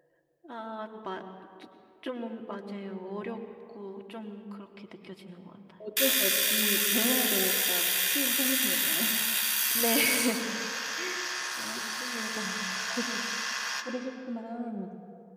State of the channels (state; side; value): identical; both; correlation 1.00